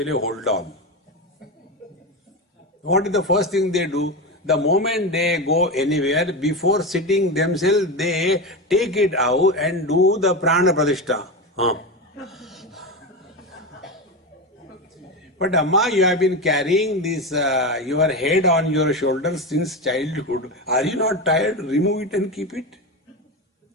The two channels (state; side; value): normal; both; correlation 0.18